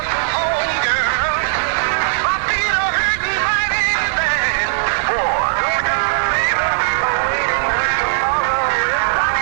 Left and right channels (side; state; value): left; silent; 65 dB below the other